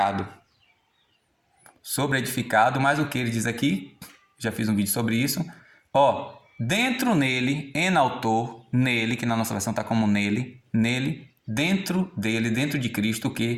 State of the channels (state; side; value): identical; both; correlation 1.00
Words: Sobre edificado, mas o que ele diz aqui, já fiz um vídeo sobre isso. Ó, dentro nele, enaltou, nele, que na nossa versão está como nele, dentro dele, dentro de Cristo, o